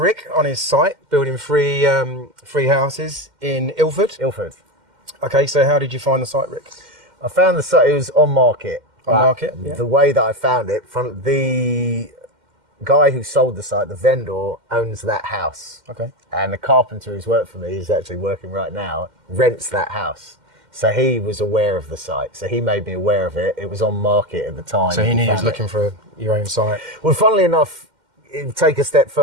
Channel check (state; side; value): late; left; 2.1 ms